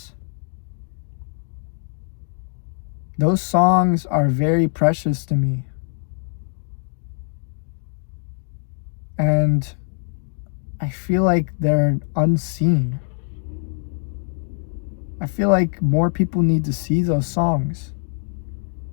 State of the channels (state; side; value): silent; right; 63 dB below the other